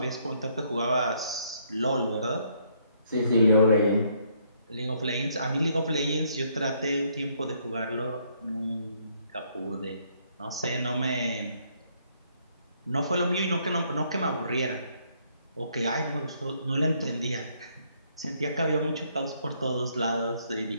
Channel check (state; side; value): inverted; both; correlation -0.69